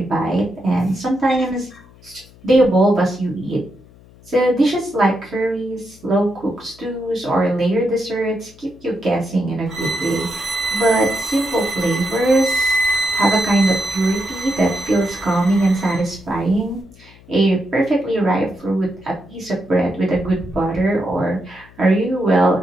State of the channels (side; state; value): left; noise; hum, 25 dB below the sound